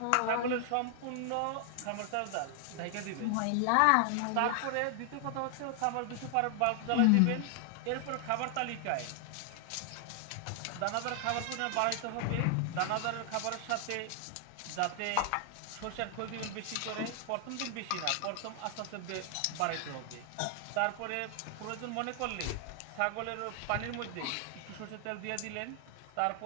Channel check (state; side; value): different; both; correlation 0.00